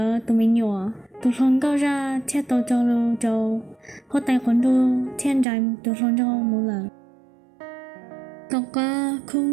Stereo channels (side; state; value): left; drops out; at 5.5 s